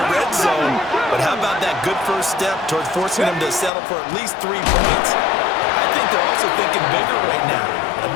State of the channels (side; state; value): right; drops out; at 3.7 s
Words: red zone. But how about that good first step towards forcing them to settle for at least 3 points? I think they're also thinking bigger right now.